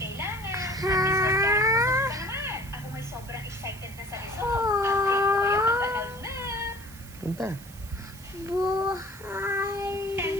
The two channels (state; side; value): noise; right; hiss, 19 dB below the sound